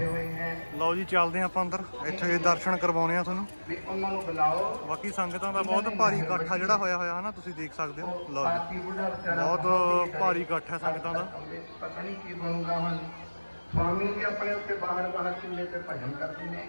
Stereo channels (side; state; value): both; inverted; correlation -1.00